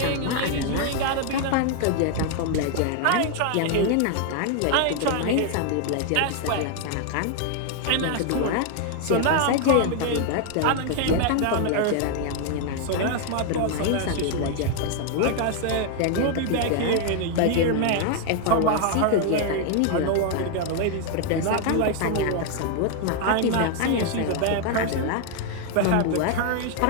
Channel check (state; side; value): different; both; correlation 0.00